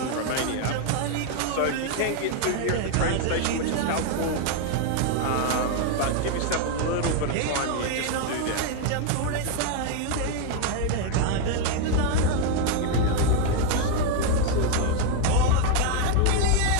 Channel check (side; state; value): both; different; correlation 0.01